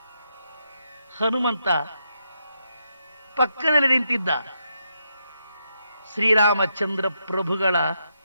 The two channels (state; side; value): inverted; both; correlation -0.81